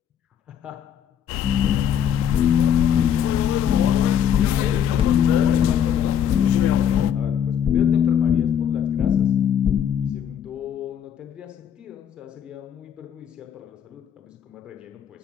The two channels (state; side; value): quieter; right; 9.0 dB